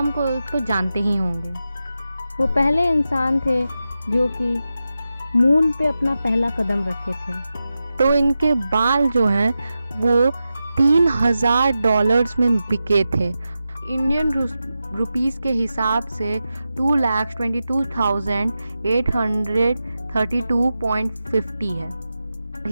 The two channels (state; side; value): inverted; both; correlation -0.91